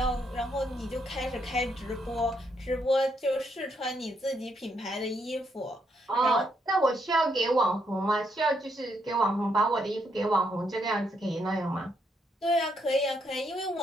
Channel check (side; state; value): both; normal; correlation 0.76